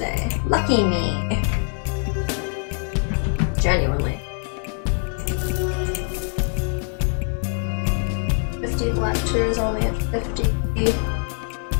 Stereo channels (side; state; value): right; silent; 55 dB below the other